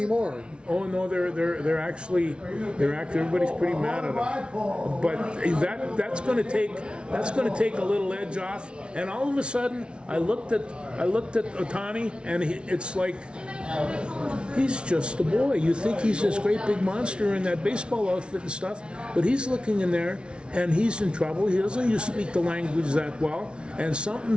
Oh no, they're actually everybody's pretty mad at them. But that's going to take a little edge off. And all of a sudden, I looked at Ohtani, and it's like he's just a boy. You think he's this great big monster in that baseball outfit and stuff, but he's looking in there and he's in trouble. He doesn't speak the language that well, and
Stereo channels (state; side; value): late; left; 0.057 ms